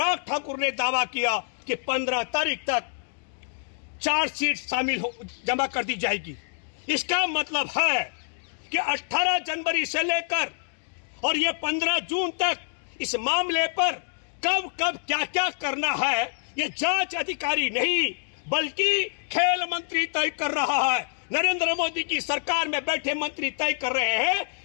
ठाकुर ने दावा किया कि 15 तारीख तक चार्जशीट जमा कर दी जाएगी। इसका मतलब है कि 18 जनवरी से लेकर और ये 15 जून तक इस मामले पर कब कब क्या क्या करना है, ये जांच अधिकारी नहीं बल्कि खेल मंत्री तय कर रहा है। नरेंद्र मोदी की सरकार में बैठे मंत्री तय कर रहे हैं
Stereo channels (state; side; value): silent; right; digital silence